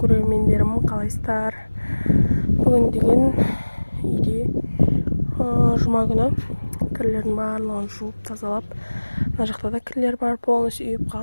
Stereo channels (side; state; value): both; inverted; correlation -1.00